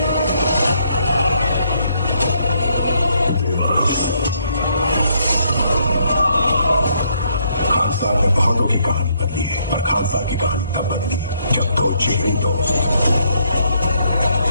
खानसार ने बहुतों की कहानी बदली है, पर खानसार की कहानी तब बदली जब दो जिगरी दोस्त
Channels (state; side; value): inverted; both; correlation -0.72